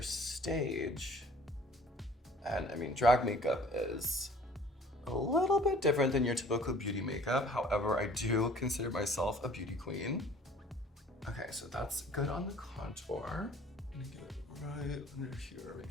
stage. And I mean, drag makeup is a little bit different than your typical beauty makeup. However, I do consider myself a beauty queen. Okay, so that's good on the contour. I'm gonna get it right under here.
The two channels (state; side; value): normal; both; correlation 0.51